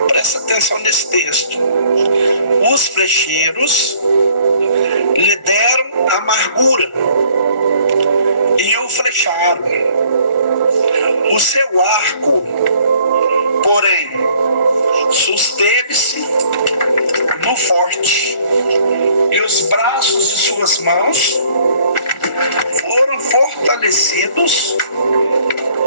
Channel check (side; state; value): right; late; 1.4 ms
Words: presta atenção nesse texto. Os flecheiros lhe deram amargura e o flecharam. O seu arco, porém, susteve-se no forte, e os braços de suas mãos foram fortalecidos